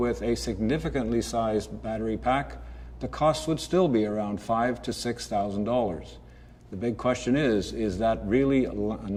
a significantly sized battery pack, the cost would still be around $5,000 to $6,000. The big question is that really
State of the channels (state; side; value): identical; both; correlation 1.00